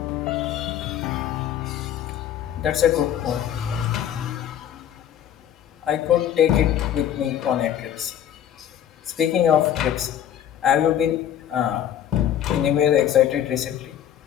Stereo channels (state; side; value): quieter; right; 10.3 dB